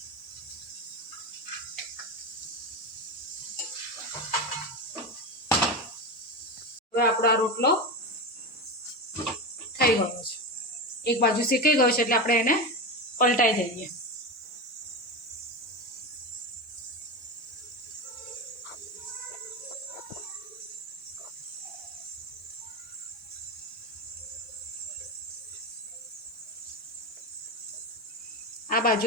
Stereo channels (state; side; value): normal; both; correlation 0.19